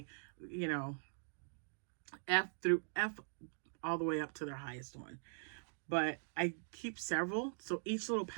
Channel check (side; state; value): left; silent; digital silence